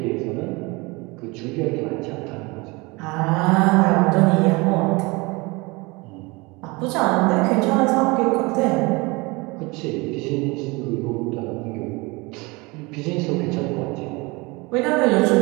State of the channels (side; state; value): left; quieter; 25.3 dB